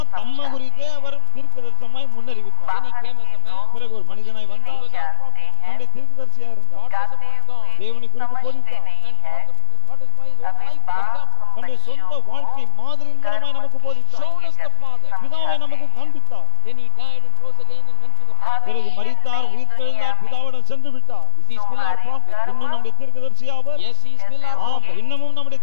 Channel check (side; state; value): both; different; correlation 0.00